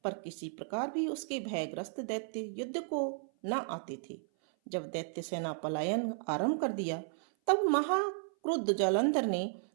पर किसी प्रकार भी उसके भयग्रस्त दैत्य युद्ध को न आते थे। जब दैत्य सेना पलायन आरंभ कर दिया, तब महाक्रुद्ध जालंधर ने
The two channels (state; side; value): silent; left; 55 dB below the other